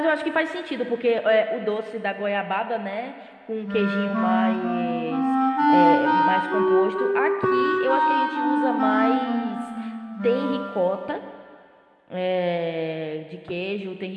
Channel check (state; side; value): identical; both; correlation 1.00